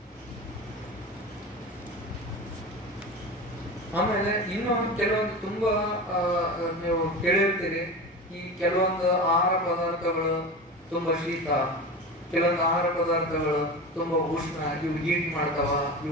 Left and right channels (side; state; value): both; normal; correlation 0.28